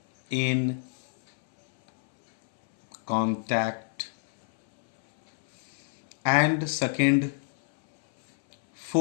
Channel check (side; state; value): right; silent; 60 dB below the other